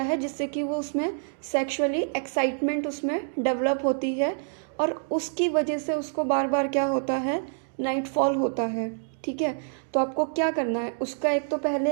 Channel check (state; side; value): silent; left; digital silence